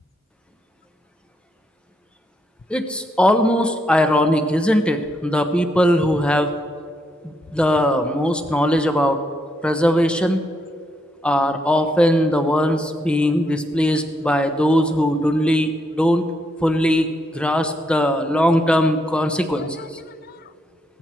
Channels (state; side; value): normal; both; correlation 0.77